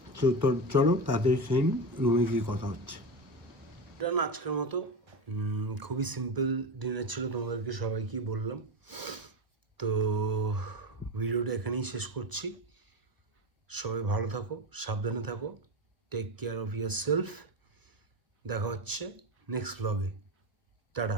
তো চলো তাড়াতাড়ি সেই রুমে গিয়ে কথা হচ্ছে। এটা না আজকের মতো খুবই সিম্পল ডিনার ছিল, তোমাদেরকে সবাইকেই বললাম। তো ভিডিওটা এখানেই শেষ করছি। সবাই ভালো থাকো, সাবধানে থাকো, take care of yourself. দেখা হচ্ছে নেক্সট ব্লগে। Tata,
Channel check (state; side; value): late; left; 1.1 ms